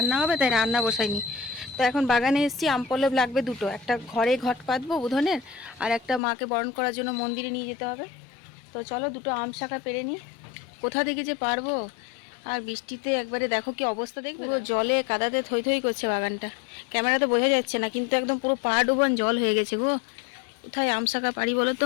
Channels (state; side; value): drops out; right; at 6.2 s